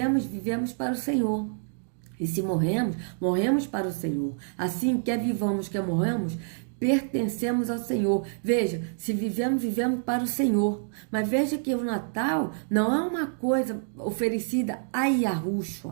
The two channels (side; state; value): left; silent; digital silence